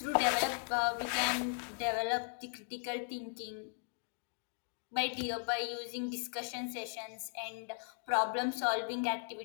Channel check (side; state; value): right; silent; 53 dB below the other